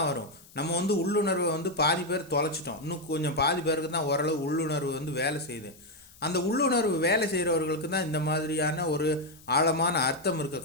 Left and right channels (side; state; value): left; noise; hiss, 24 dB below the sound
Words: வரும். நம்ம வந்து உள்ளுணர்வை வந்து பாதி பேர் தொலைச்சிட்டோம், இன்னும் கொஞ்சம் பாதி பேருக்கு தான் ஓரளவு உள்ளுணர்வு வந்து வேலை செய்யுது. அந்த உள்ளுணர்வு வேலை செய்கிறவர்களுக்கு தான் இந்த மாதிரியான ஒரு ஆழமான அர்த்தம் இருக்க